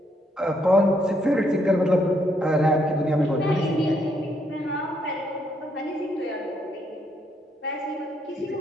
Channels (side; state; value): both; normal; correlation 0.74